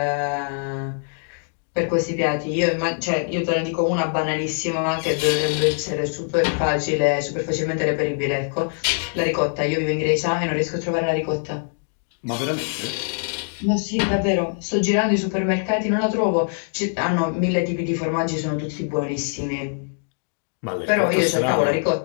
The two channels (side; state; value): right; silent; 63 dB below the other